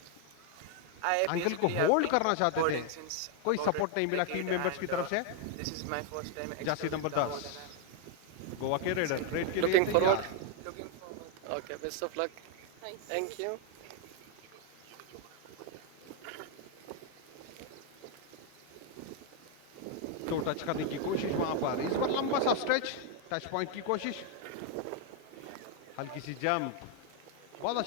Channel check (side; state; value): both; different; correlation 0.01